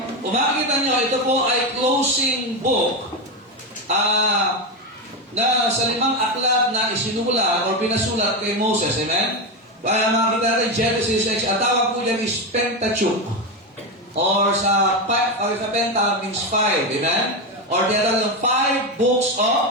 kung makikita nyo, ito po ay closing book na sa 5 aklat na isinula or pinasulat kay Moses. Amen? Kaya makikita natin Genesis 6, ang tawag po dyan is Pentateuch. Or sa Penta means 5. Amen? Or tinatawag ng 5 books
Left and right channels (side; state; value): both; normal; correlation 0.13